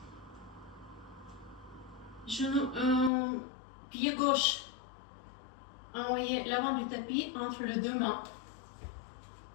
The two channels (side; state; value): right; drops out; at 3.1 s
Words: Genou, pied gauche. Envoyez l'avant du tapis entre les deux mains.